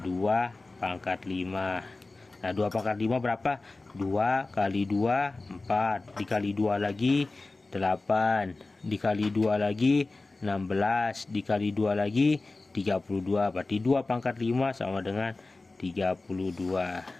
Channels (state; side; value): quieter; right; 3.3 dB